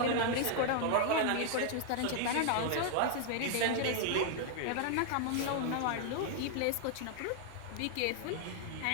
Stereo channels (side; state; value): both; different; correlation 0.00